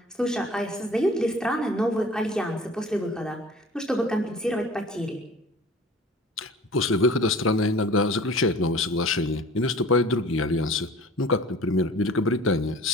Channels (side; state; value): both; normal; correlation 0.45